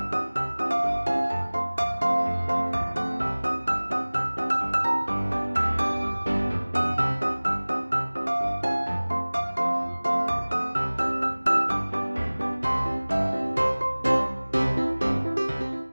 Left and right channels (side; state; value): both; inverted; correlation -1.00